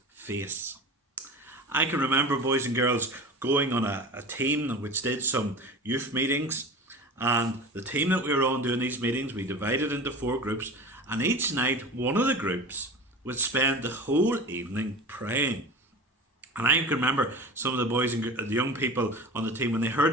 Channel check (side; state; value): both; normal; correlation 0.33